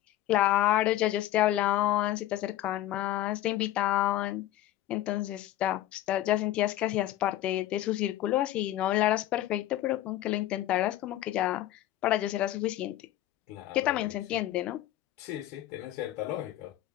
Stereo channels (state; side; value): quieter; right; 13.9 dB